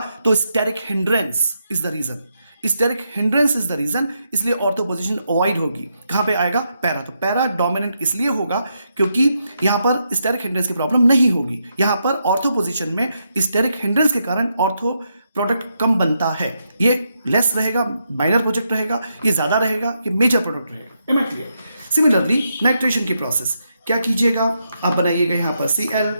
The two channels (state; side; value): inverted; both; correlation -0.81